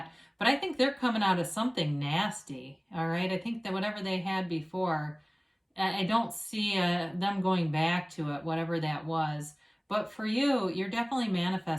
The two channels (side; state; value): both; identical; correlation 1.00